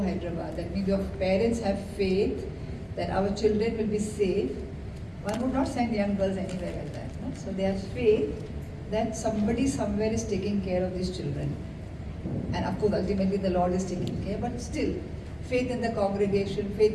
Hyderabad. That means your parents have faith that our children will be safe. One would not send young girls anywhere like that. No? So they have faith that somebody somewhere is taking care of these children. And of course ultimately the Lord is taking care, but still faith in the congregation, faith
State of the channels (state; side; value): identical; both; correlation 1.00